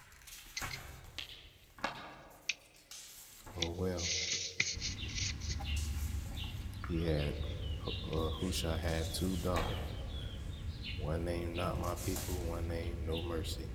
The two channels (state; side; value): identical; both; correlation 1.00